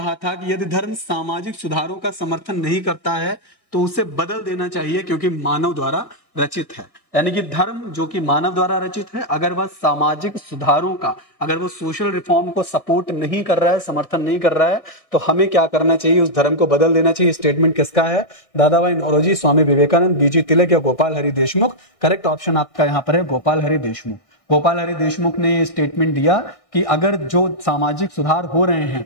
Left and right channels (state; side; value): late; right; 1.6 ms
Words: था कि यदि धर्म सामाजिक सुधारों का समर्थन नहीं करता है तो उसे बदल देना चाहिए क्योंकि मानव द्वारा रचित है। यानी कि धर्म जो कि मानव द्वारा रचित है, अगर वह सामाजिक सुधारों का, अगर वो सोशल रिफॉर्म को सपोर्ट नहीं कर रहा है, समर्थन नहीं कर रहा है, तो हमें क्या करना चाहिए? उस धर्म को बदल देना चाहिए। स्टेटमेंट किसका है? दादाभाई नौरोजी, स्वामी विवेकानंद, बीजी तिलक या गोपाल हरि देशमुख। करेक्ट ऑप्शन आपका यहां पर है गोपाल हरि देशमुख। गोपाल हरि देशमुख ने स्टेटमेंट दिया कि अगर जो सामाजिक सुधार हो रहे हैं,